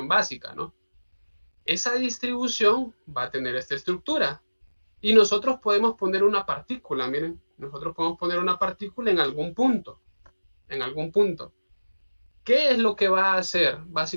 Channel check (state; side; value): inverted; both; correlation -1.00